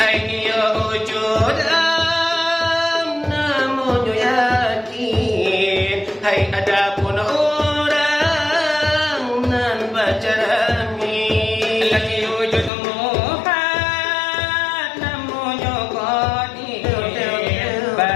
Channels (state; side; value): drops out; right; at 12.7 s